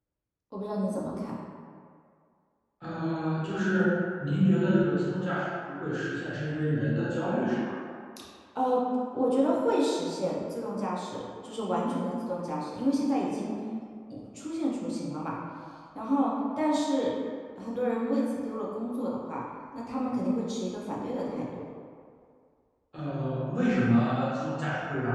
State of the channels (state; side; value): identical; both; correlation 1.00